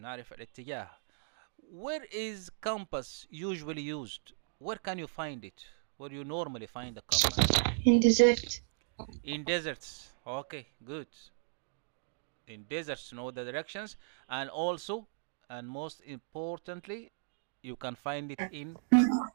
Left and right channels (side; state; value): left; silent; digital silence